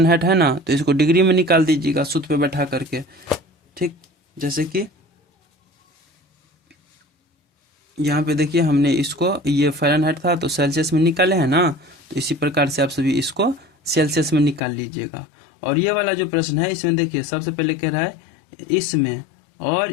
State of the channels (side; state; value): right; drops out; at 14.6 s